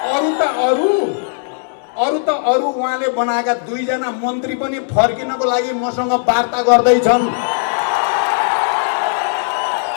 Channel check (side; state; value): right; silent; digital silence